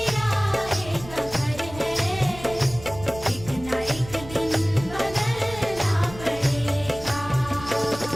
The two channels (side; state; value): right; noise; rumble, 15 dB below the sound